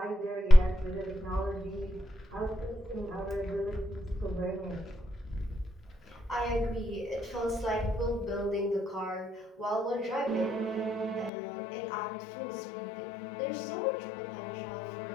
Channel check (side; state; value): right; drops out; at 11.3 s